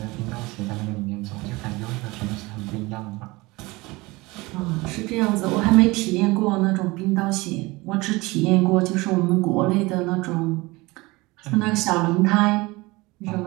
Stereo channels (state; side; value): quieter; left; 22.6 dB